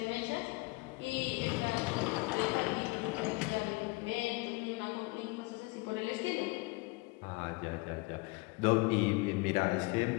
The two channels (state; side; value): quieter; right; 25.1 dB